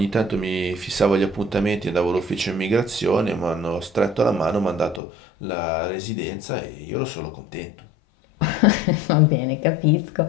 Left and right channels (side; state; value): right; drops out; at 5.0 s